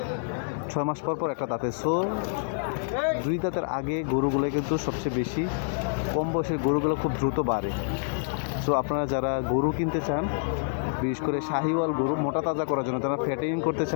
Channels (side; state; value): right; silent; digital silence